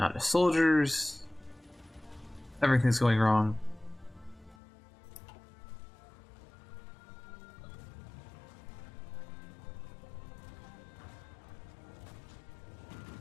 the soldiers. Everything's going wrong.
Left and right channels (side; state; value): right; drops out; at 4.5 s